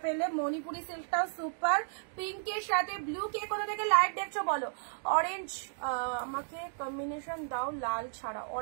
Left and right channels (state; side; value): silent; left; digital silence